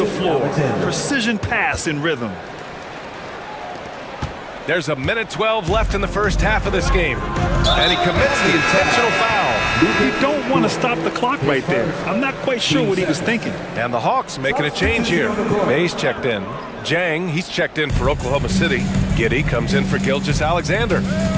floor. Precision pass in rhythm. There's 1:12 left in the first half of this game. And he commits the intentional foul. You don't want to stop the clock right there. I'm not quite sure what he was thinking. And the Hawks making a change here. Mays checked in. Jang, he's checked in for Oklahoma City. Giddey comes in for Gilgeous Alexander.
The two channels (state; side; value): identical; both; correlation 1.00